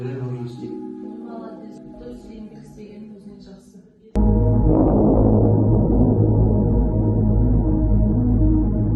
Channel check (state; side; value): identical; both; correlation 1.00